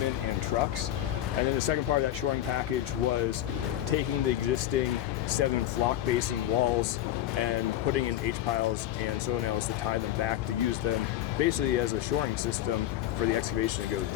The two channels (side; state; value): right; quieter; 12.8 dB